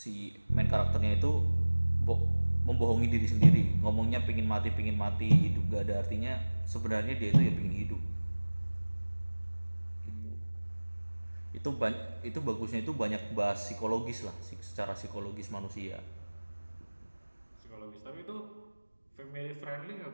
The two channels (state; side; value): inverted; both; correlation -1.00